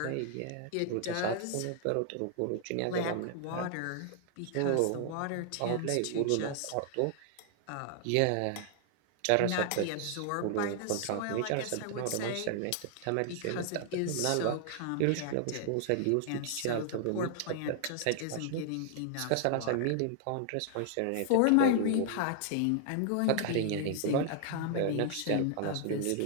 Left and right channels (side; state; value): both; different; correlation 0.00